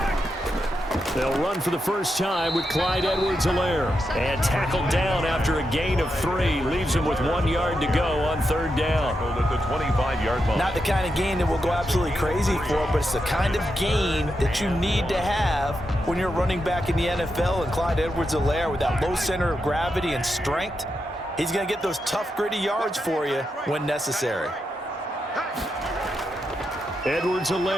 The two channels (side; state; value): both; normal; correlation 0.86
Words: They'll run for the first time with Clyde Edwards-Helaire. And tackled down after a gain of 3. Leaves him with 1 yard to go on third down. At the 25-yard line. Not the kind of gain that we'll go absolutely crazy for, but it's the kind of gain that you need to have when you're running back in the NFL. And Clyde Edwards-Helaire, with that low center of gravity and strength, he's going to get those tough, gritty yards for you when necessary.